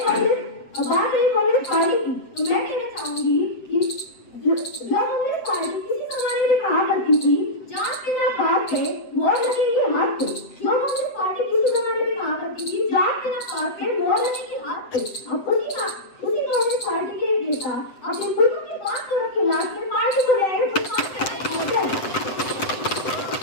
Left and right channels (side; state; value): right; late; 7.8 ms